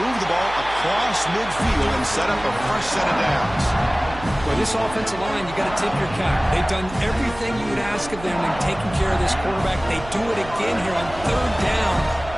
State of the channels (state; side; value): noise; right; hum, 14 dB below the sound